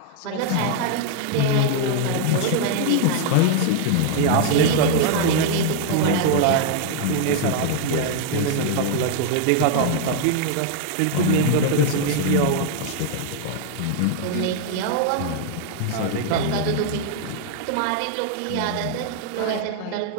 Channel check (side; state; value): both; different; correlation 0.00